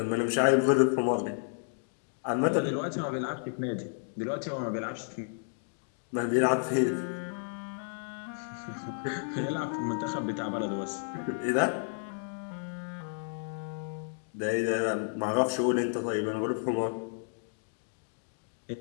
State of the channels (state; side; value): silent; right; digital silence